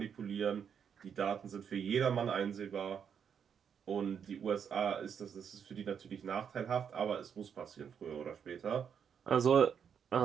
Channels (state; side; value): quieter; left; 7.6 dB